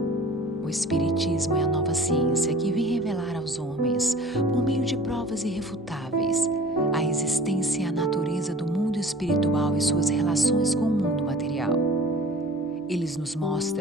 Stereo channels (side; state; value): both; normal; correlation 0.45